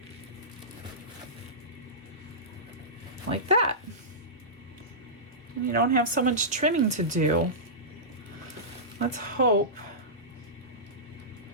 Like that. And you don't have so much trimming to do. Let's hope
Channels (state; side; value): normal; both; correlation -0.17